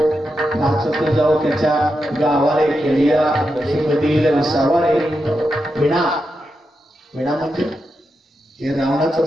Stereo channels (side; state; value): both; normal; correlation 0.87